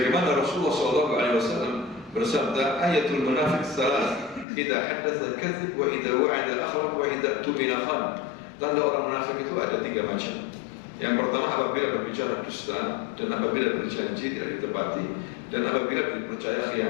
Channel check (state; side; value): drops out; right; at 4.5 s